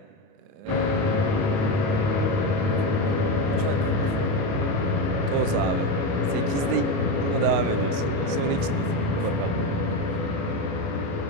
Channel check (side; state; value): left; late; 29 ms